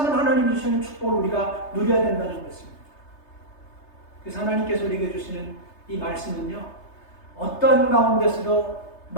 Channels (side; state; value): right; late; 3.3 ms